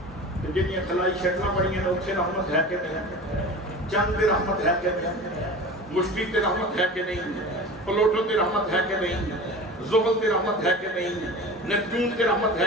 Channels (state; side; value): normal; both; correlation 0.35